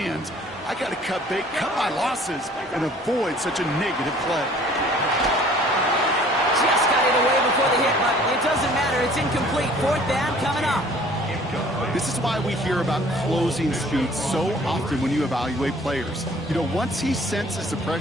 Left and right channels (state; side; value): normal; both; correlation 0.53